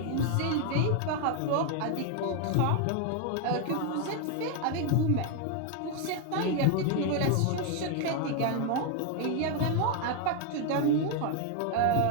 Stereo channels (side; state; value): both; different; correlation 0.01